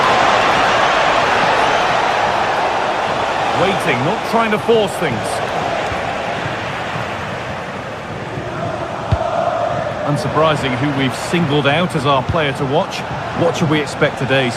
Waiting, not trying to force things. Unsurprising who we've singled out as our player to watch. What should we expect today,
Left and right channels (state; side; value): identical; both; correlation 1.00